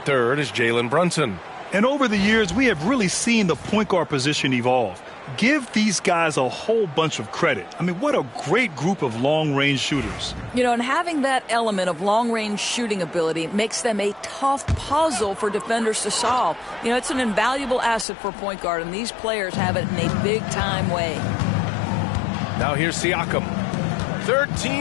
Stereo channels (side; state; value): right; drops out; at 18.1 s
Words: is Jalen Brunson. And over the years, we have really seen the point guard position evolve. Give these guys a whole bunch of credit. I mean, what a great group of long-range shooters. You know, and having that element of long-range shooting ability makes them a tough puzzle for defenders to solve. You know, it's an invaluable asset for point guard, and these players have it in a big-time way. Now here's Siakam.